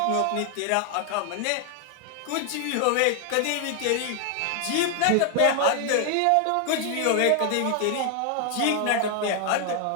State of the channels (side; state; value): both; different; correlation 0.00